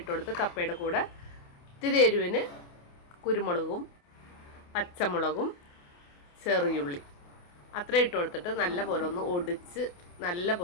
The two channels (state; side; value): late; right; 28 ms